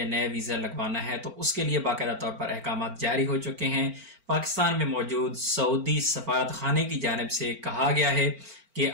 نیا ویزا لگوانا ہے، تو اس کے لیے باقاعدہ طور پر احکامات جاری ہو چکے ہیں۔ پاکستان میں موجود سعودی سفارت خانے کی جانب سے کہا گیا ہے کہ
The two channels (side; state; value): left; late; 4.4 ms